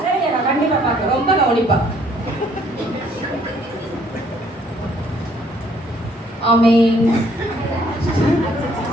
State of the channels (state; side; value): normal; both; correlation 0.63